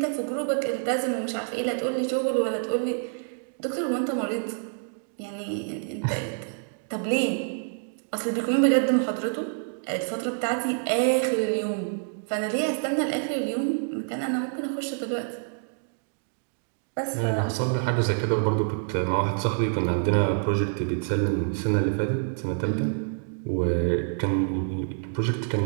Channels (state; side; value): silent; left; digital silence